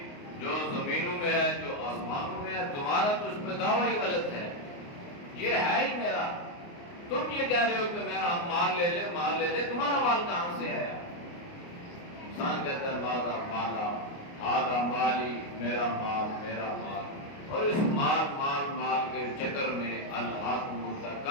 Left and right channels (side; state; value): right; late; 29 ms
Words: جو زمینوں میں ہے جو آسمانوں میں ہے تمہارا تو اس میں دعویٰ ہی غلط ہے. یہ ہے ہی میرا. تم یہ کہہ رہے ہو کہ میرا ہم مال لے لے، تمہارا مال کہاں سے آیا؟ انسان کہتا ہے مالا مالا آدھا مالی، میرا مال میرا مال، اور اس مال مال مال کے چکر میں الہاکم